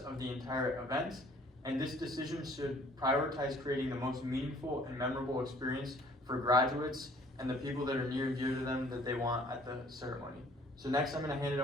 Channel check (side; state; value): both; normal; correlation 0.56